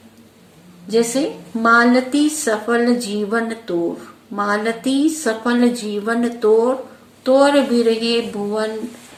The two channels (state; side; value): identical; both; correlation 1.00